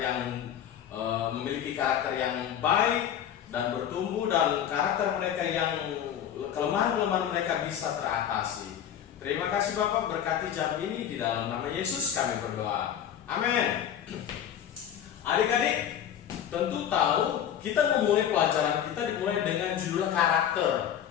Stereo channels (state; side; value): quieter; right; 9.7 dB